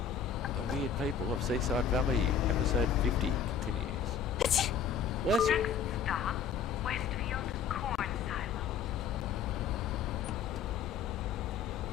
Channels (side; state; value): right; quieter; 7.1 dB